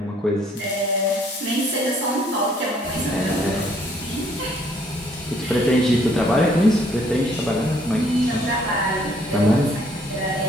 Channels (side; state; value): both; normal; correlation 0.64